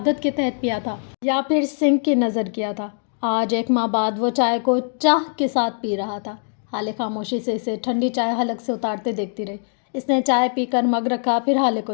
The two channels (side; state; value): right; silent; digital silence